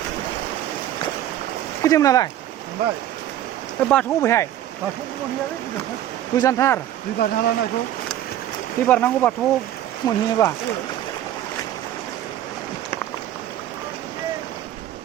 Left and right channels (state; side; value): quieter; left; 12.1 dB